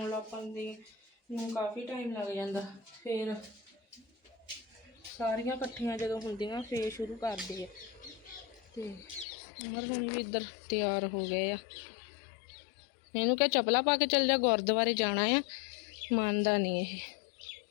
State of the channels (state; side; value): drops out; right; at 9.2 s